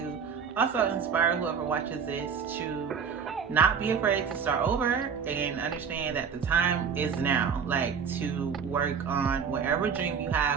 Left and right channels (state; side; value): quieter; left; 6.6 dB